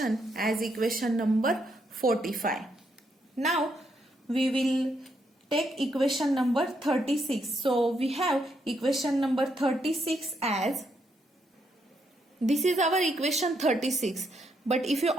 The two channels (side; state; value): both; normal; correlation 0.77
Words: as equation number 45. Now we will take equation number 36. So we have equation number 36 as, this is our equation 36, but if you